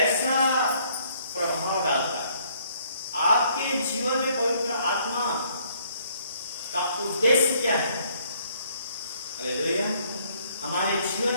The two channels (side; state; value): both; inverted; correlation -0.65